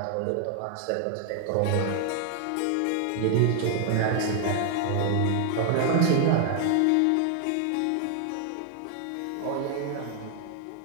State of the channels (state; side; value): different; both; correlation 0.00